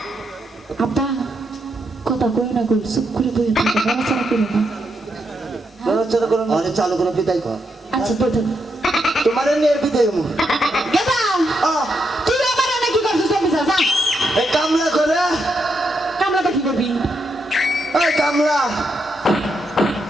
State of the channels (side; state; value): both; normal; correlation 0.81